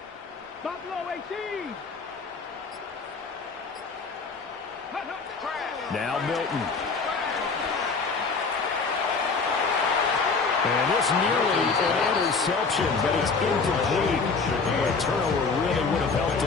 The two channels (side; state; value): right; quieter; 4.6 dB